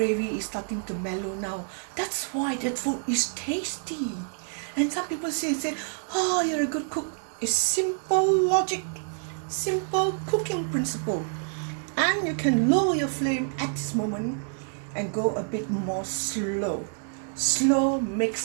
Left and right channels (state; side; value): silent; left; 60 dB below the other